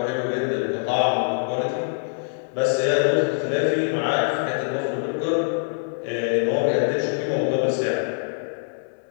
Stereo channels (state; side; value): silent; right; 63 dB below the other